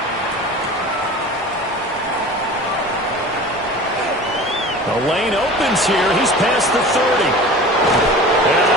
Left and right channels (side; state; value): both; normal; correlation 0.38